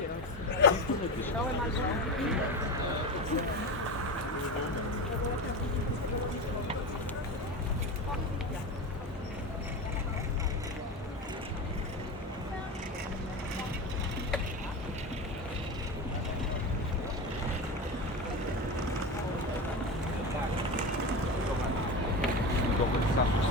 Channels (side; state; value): both; normal; correlation 0.23